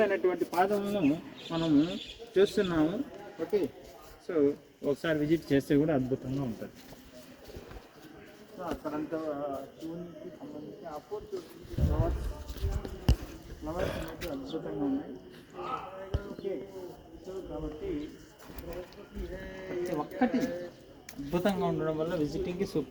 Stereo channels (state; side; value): identical; both; correlation 1.00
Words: పాదములను మనము చూస్తున్నాము. ఓకే, సో ఒకసారి విజిట్ చేస్తే కూడా అద్భుతంగా ఉంటుంది. సో అక్కడంతా శివునికి సంబంధించి ఆపర్చునిటీ ఫ్లవర్స్ అనేది అద్భుతంగా ఉన్నాయి. ఓకే, సో కాబట్టి ఒక్కటి అద్భుతంగా ఉండడం వల్ల విజిటింగ్కి